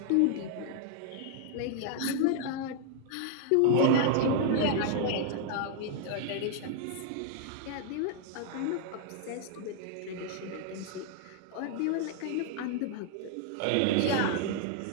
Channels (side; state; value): both; different; correlation -0.01